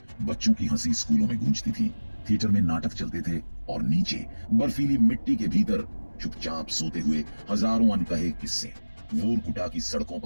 बच्चों की हंसी स्कूलों में गूंजती थी, थिएटर में नाटक चलते थे और नीचे बर्फीली मिट्टी के भीतर चुपचाप सोते हुए हजारों अनकहे किस्से। वोरकुटा की सड़कों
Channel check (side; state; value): both; inverted; correlation -1.00